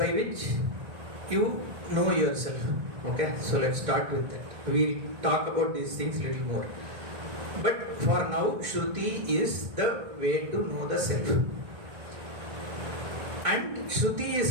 which you know yourself. Okay, so let's start with that. We'll talk about these things a little more. But for now, Shruti is the way to know the self. And Shruti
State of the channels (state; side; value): late; left; 1.6 ms